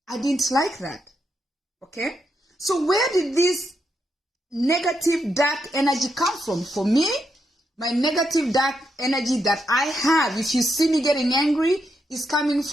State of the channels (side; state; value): both; normal; correlation 0.82